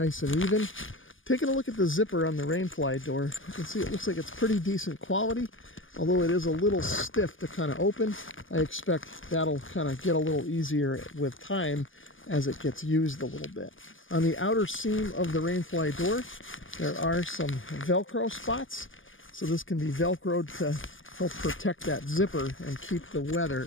and even. Taking a look at the zipper on the rain fly door, you can see it looks like it's pretty decent quality, although it is a little stiff to kind of open. I expect that'll kind of get a little easier with time as it gets used a little bit. On the outer seam of the rain fly door, there are some Velcro spots, so this can be Velcroed to help protect that zipper and keep the weather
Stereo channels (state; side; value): late; right; 0.58 ms